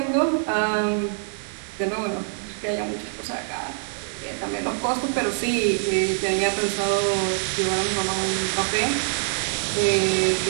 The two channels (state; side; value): silent; left; digital silence